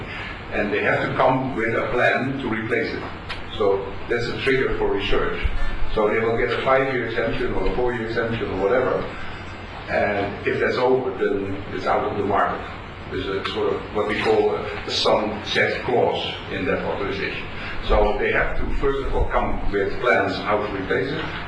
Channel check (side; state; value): both; identical; correlation 1.00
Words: And they have to come with a plan to replace it. So that's a trigger for research. So they will get a 5-year exemption or a 4-year exemption or whatever. And if that's over, then it's out of the market. There's a sort of what we call a sunset clause in that authorization. So they have to first of all come with plans how to replace it,